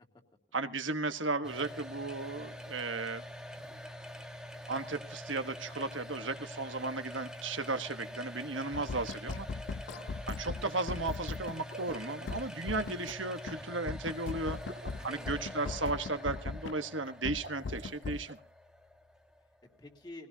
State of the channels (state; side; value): normal; both; correlation 0.10